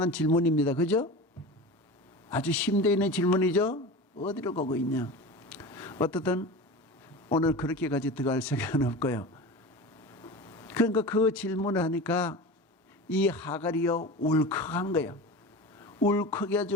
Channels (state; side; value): normal; both; correlation 0.31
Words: 질문입니다. 그죠? 아주 심도 있는 질문이죠? 어디로 가고 있냐? 어떻든 오늘 그렇게까지 들어갈 생각은 없고요. 그러니까 그 질문을 하니까 이 하갈이요, 울컥한 거예요.